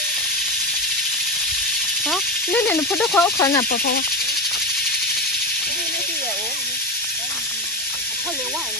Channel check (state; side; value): normal; both; correlation 0.17